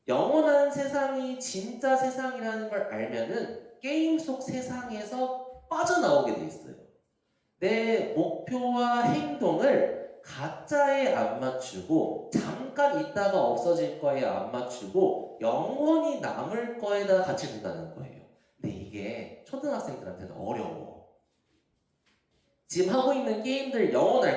영원한 세상이 진짜 세상이라는 걸 알면은 게임 속 세상에서 빠져나오게 돼 있어요. 내 목표와 행동을 가짜에 안 맞추고 잠깐 있다가 없어질 거에 안 맞추고 영원히 남을 거에다 같이 둔다는 거예요. 근데 이게 초등학생들한테는 어려워. 지금 하고 있는 게임들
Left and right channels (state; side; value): identical; both; correlation 1.00